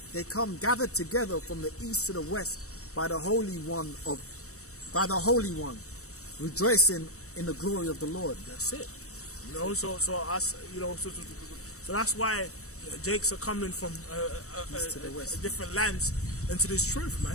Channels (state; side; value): late; right; 0.65 ms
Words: gathered together from the east to the west by the Holy One, rejoicing in the glory of the Lord. That's it. You know, so us, you know, so that's why Jakes are coming from East to the west. different lands into this truth, man.